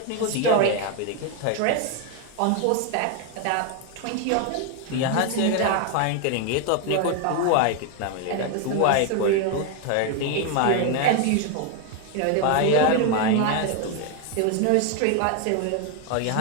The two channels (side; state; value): both; different; correlation 0.01